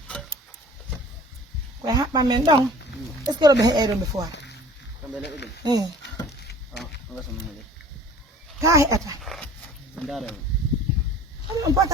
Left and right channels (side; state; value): both; normal; correlation 0.47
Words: koye haɓɓa men ɗon est ce que roɓe heƴay ɗon ɓe fowa ka heƴata on